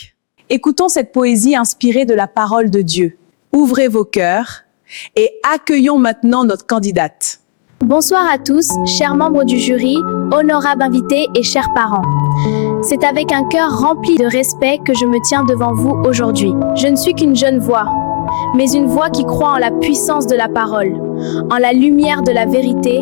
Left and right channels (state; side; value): silent; right; digital silence